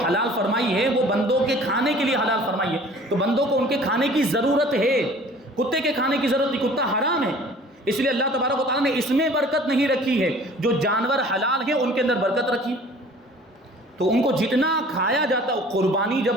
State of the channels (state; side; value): normal; both; correlation 0.49